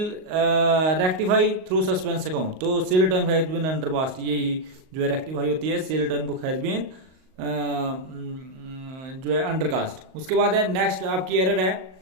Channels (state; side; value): late; left; 38 ms